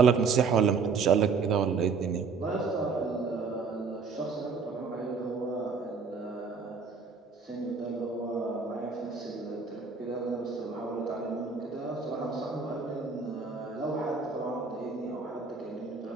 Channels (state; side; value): quieter; left; 5.1 dB